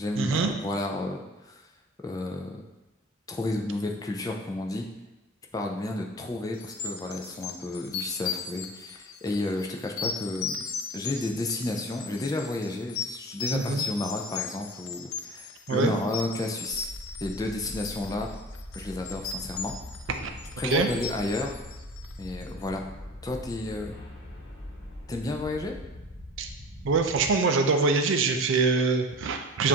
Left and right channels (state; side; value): normal; both; correlation 0.39